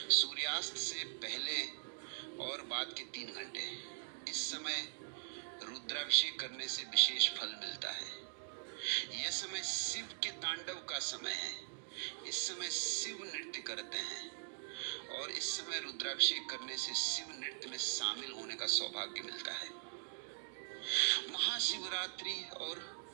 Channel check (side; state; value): left; silent; digital silence